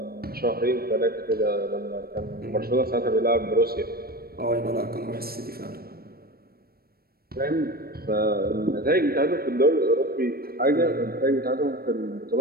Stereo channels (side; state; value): left; late; 0.44 ms